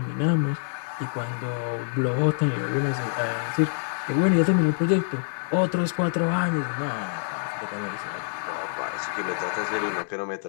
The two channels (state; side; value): silent; right; 61 dB below the other